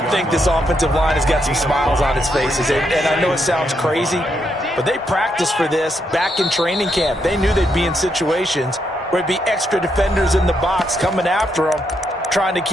think this offensive line has got some smiles on its faces. And I know it sounds crazy, but they practiced for this back in training camp. They knew they'd be in situations where it'd be extra defenders in the box coming after them, trying to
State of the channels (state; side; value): normal; both; correlation 0.79